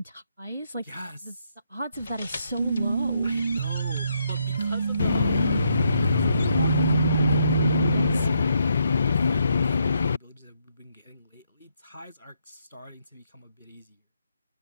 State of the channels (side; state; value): both; inverted; correlation -0.76